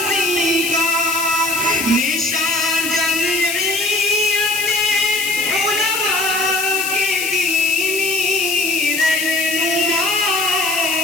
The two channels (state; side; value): noise; left; hiss, 5 dB below the sound